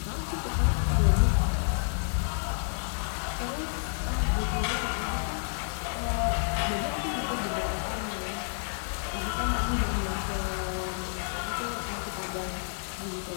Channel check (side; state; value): right; silent; 58 dB below the other